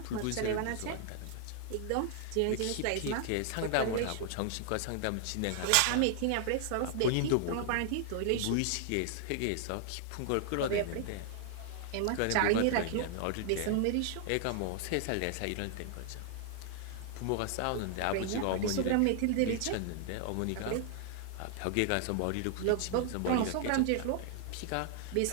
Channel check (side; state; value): both; different; correlation 0.00